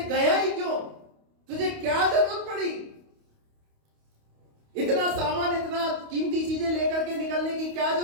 गया ही क्यों, तुझे क्या जरूरत पड़ी, इतना सामान, इतना कीमती चीजें लेकर के निकलने की क्या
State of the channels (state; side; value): late; left; 28 ms